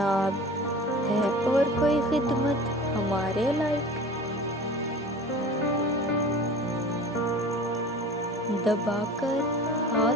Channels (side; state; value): both; normal; correlation 0.39